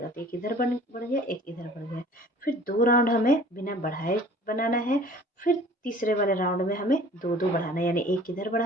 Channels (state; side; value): normal; both; correlation 0.48